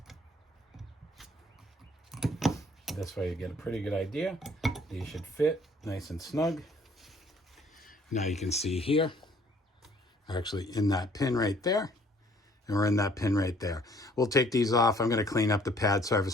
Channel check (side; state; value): both; normal; correlation 0.60